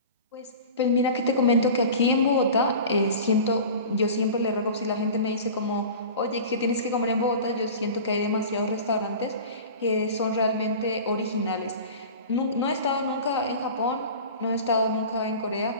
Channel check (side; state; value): both; inverted; correlation -0.36